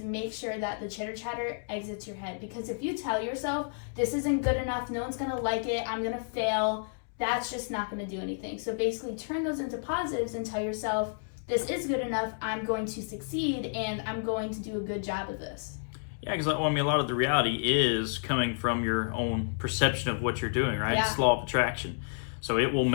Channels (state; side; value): silent; right; digital silence